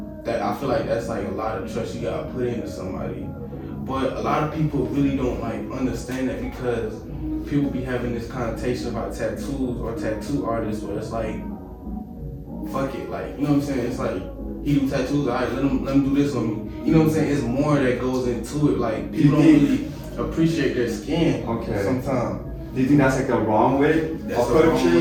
that. I feel like that's like a lot of trust you gotta put into somebody. But a lot of people really don't like understand that, because people be having this connotation about tattoos or tattoo artists where it's like, fuck it, like, you know what I'm saying? It's like, he do tattoos, alright, let him do this on me. You know what I'm saying? It's more that goes into it. Like, people don't really appreciate their skin sometimes. Do you think that's like the wrong way of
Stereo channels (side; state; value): both; identical; correlation 1.00